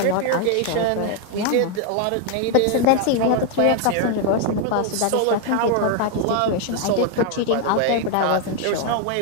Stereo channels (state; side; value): different; both; correlation 0.01